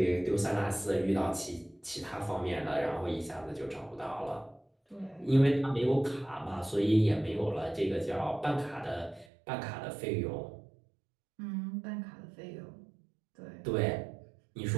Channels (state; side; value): drops out; left; at 9.2 s